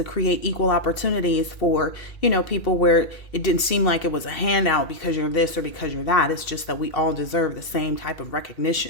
create equal opportunities for, people where it didn't seem like it was a handout because you're this or because you're that. It's just that we all deserve the same type of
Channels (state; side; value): late; right; 2.7 ms